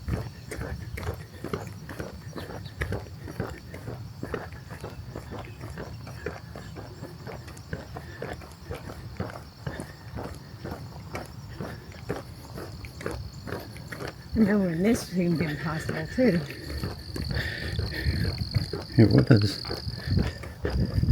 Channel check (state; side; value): identical; both; correlation 1.00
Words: I know when this seemed impossible too. It was.